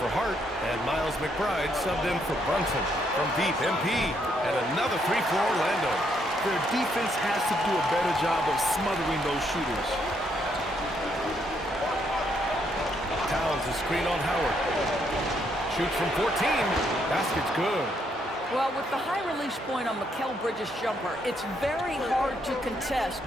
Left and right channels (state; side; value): normal; both; correlation 0.74